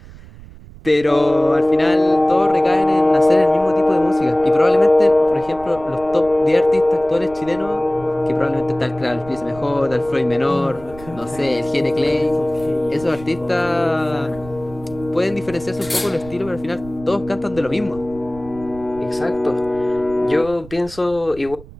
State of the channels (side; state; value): right; noise; rumble, 18 dB below the sound